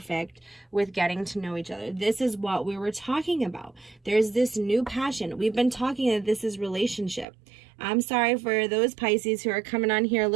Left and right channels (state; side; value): drops out; left; at 7.2 s